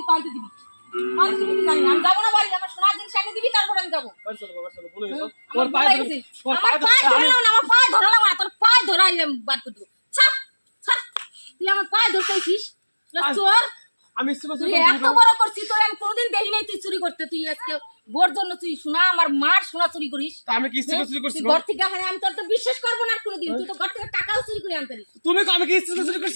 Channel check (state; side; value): inverted; both; correlation -1.00